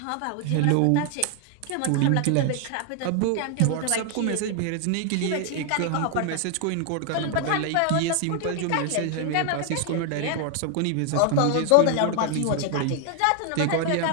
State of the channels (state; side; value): different; both; correlation 0.00